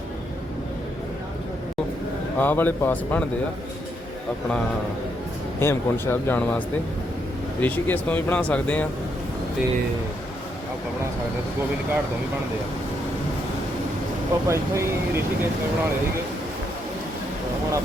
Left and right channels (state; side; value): normal; both; correlation 0.77